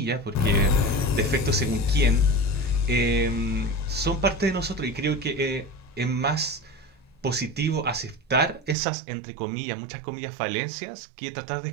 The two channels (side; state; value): left; drops out; at 8.8 s